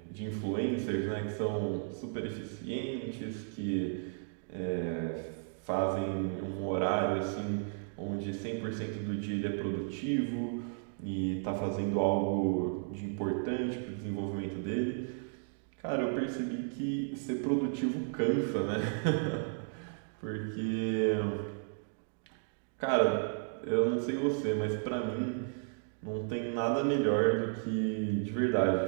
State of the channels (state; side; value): silent; left; digital silence